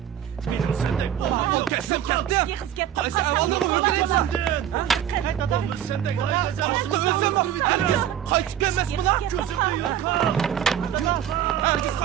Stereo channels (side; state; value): left; quieter; 10.4 dB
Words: Benim sendek o kesim ketdim. Qaysi avalni o'ldiraysan? Qayt adam sendek. Aslida o'lsam, herkes qaytib kelmasmi lan? Ko'zimni yo'qol! Herkes